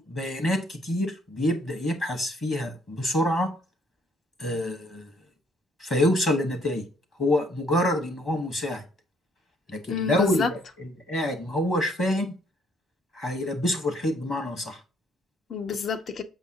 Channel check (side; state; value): both; normal; correlation 0.66